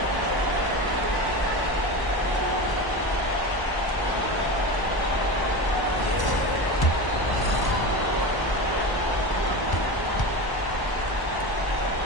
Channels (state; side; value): late; right; 1.0 ms